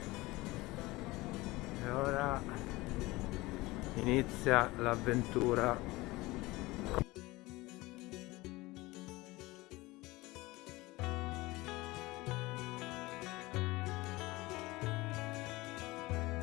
e ora inizia l'avventura.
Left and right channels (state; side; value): quieter; right; 20.7 dB